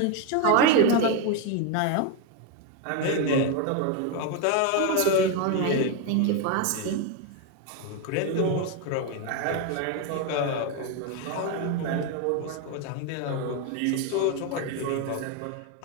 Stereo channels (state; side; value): different; both; correlation 0.01